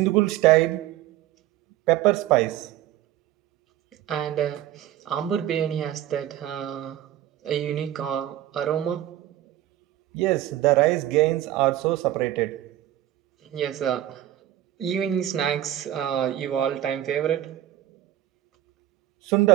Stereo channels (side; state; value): left; quieter; 13.1 dB